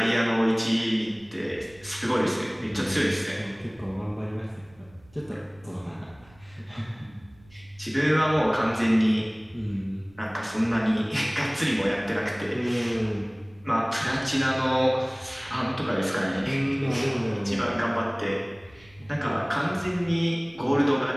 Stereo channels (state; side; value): noise; right; rumble, 27 dB below the sound